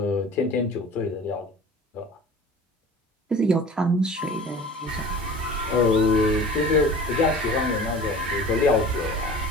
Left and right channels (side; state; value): both; normal; correlation 0.41